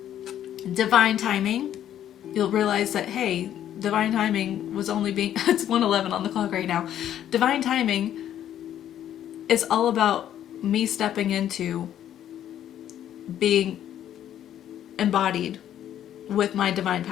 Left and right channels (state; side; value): quieter; right; 10.9 dB